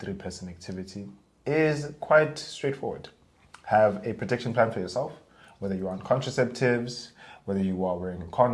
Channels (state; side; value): identical; both; correlation 1.00